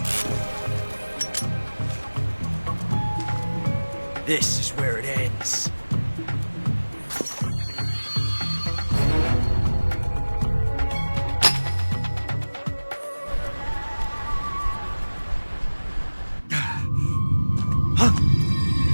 This is where it ends.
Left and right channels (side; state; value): both; inverted; correlation -1.00